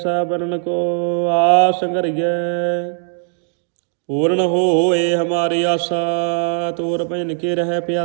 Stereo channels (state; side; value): silent; left; digital silence